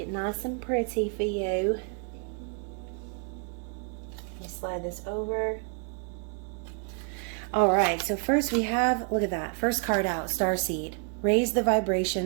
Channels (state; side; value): quieter; left; 39.1 dB